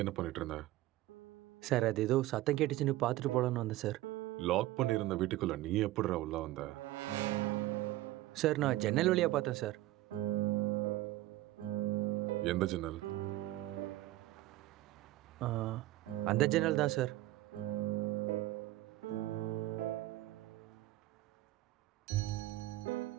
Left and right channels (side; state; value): left; quieter; 16.3 dB